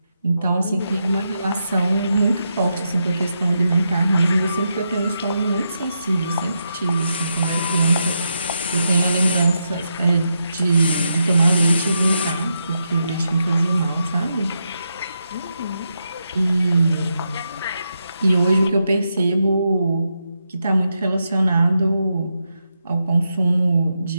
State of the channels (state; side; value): inverted; both; correlation -0.84